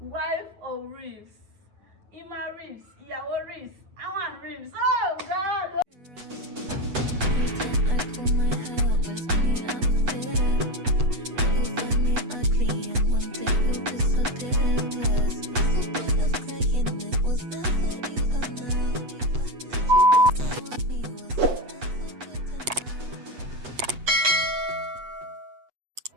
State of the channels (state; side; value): late; left; 8.1 ms